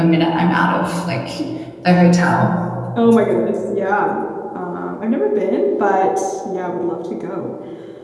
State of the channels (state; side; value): identical; both; correlation 1.00